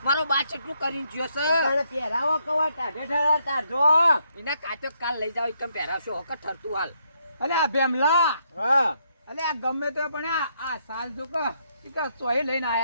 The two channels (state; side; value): inverted; both; correlation -0.75